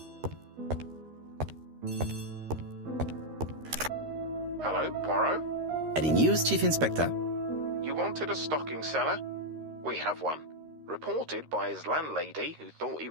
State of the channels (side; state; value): left; late; 13 ms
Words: Hello, Poirot? Any news, Chief Inspector? You wanted a stocking seller? We have one. Reported by his landlady who thought he